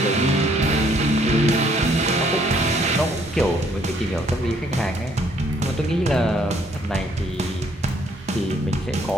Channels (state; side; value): normal; both; correlation 0.65